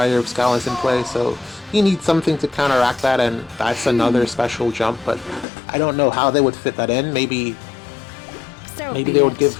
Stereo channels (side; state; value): right; drops out; at 5.5 s